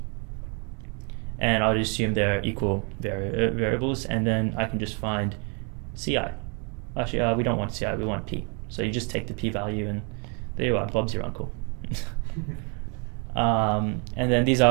And I'll just assume they're equal variables, and then I can just find CI. Actually, we don't want CI, we want P. So you just take the p-value, and there you are, Bob's your uncle. And then these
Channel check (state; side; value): quieter; left; 34.8 dB